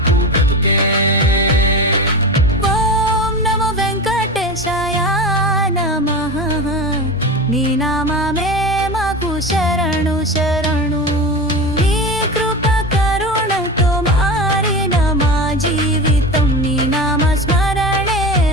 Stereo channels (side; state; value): both; normal; correlation 0.26